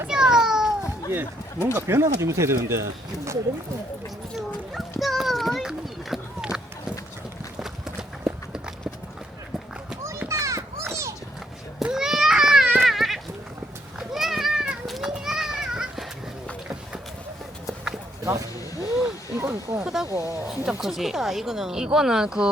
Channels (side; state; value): both; normal; correlation 0.72